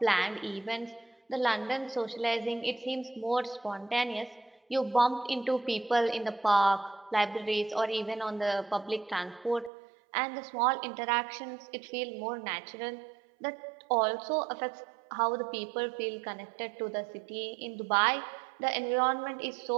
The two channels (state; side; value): drops out; left; at 9.7 s